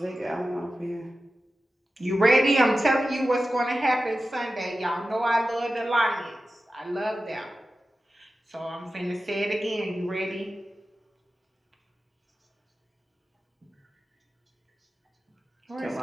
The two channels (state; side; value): normal; both; correlation 0.94